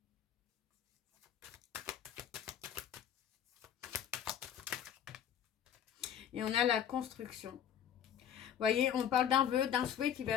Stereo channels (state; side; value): quieter; right; 9.3 dB